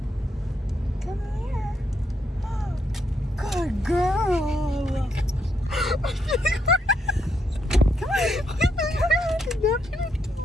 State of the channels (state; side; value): normal; both; correlation 0.77